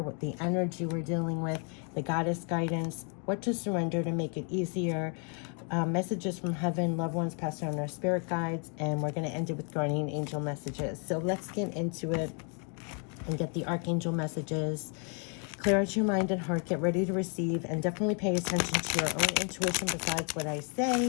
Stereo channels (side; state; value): right; quieter; 39.7 dB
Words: what the energy we're dealing with, the goddess guidance, what to surrender to make it easier, messages from heaven, loved ones passed on our spirit guides, and we're going to end it with guardian angel messages. So let's get into it and get the Archangel messages. Clear out your mind and heart, get ready to receive, and definitely pay attention to your own intuition besides what I